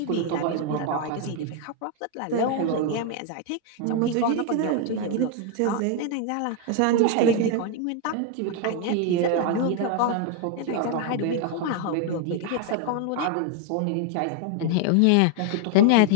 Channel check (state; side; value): different; both; correlation 0.00